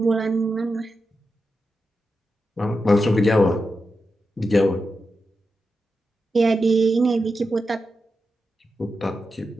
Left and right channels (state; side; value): normal; both; correlation 0.89